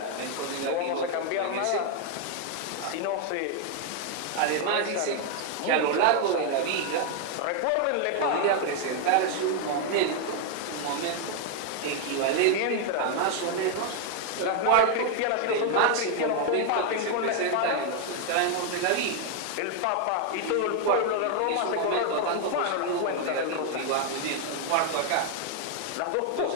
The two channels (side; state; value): both; different; correlation 0.00